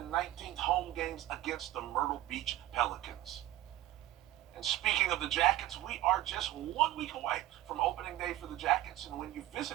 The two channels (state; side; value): quieter; left; 15.1 dB